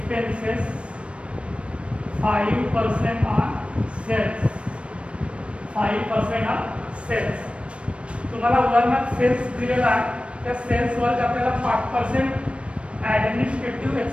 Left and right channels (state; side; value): late; left; 0.060 ms